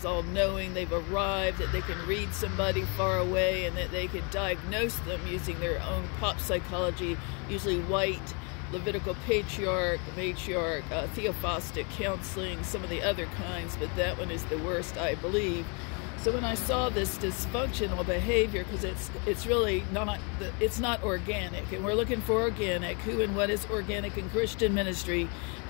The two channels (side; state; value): right; quieter; 34.7 dB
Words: all-knowing, they've arrived, that they can read somebody far away, and that they can diagnose them using their own pop psychology, usually white, Levitical patriarch, matriarch, theophostic counseling, some of the other kinds, but that one is the worst, I believe. So when I saw this dysfunctional behavior, because it's really not, it's not organic, and we're looking for organic. Who and what is organic in Christian ministry?